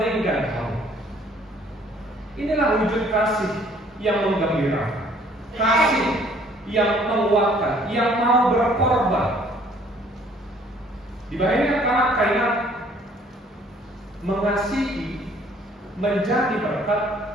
kamu. Inilah wujud kasih yang menggembirakan, kasih yang menguatkan, yang mau berkorban. Dibayangkan karena mengasihi menjadi berkat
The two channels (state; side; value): normal; both; correlation 0.59